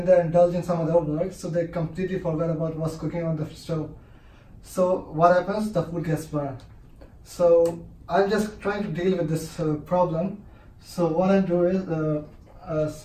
they indulge in some other work, so they completely forget about what's cooking on the stove. So what happens? The food gets burned. So I'm just trying to deal with this problem. So what I do is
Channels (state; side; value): identical; both; correlation 1.00